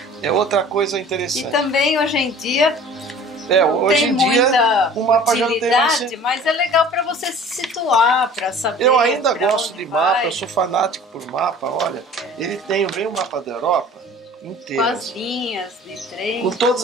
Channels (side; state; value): both; normal; correlation 0.46